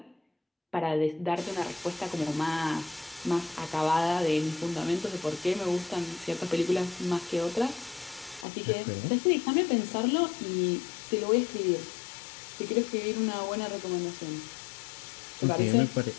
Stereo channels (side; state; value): right; drops out; at 8.5 s